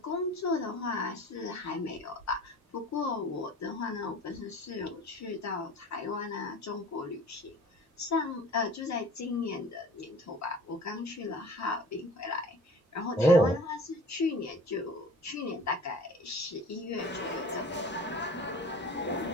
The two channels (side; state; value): both; normal; correlation 0.43